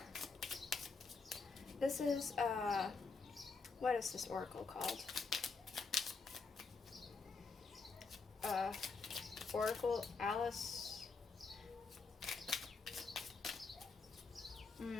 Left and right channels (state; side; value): quieter; right; 4.5 dB